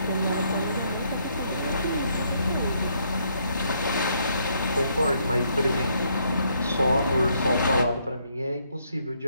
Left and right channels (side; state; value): both; inverted; correlation -0.72